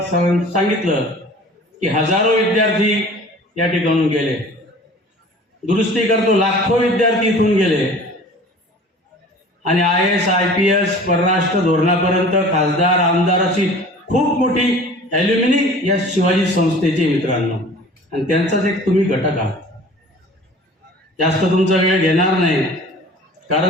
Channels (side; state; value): both; normal; correlation 0.44